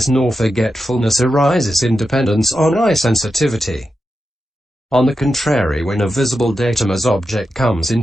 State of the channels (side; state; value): both; normal; correlation 0.89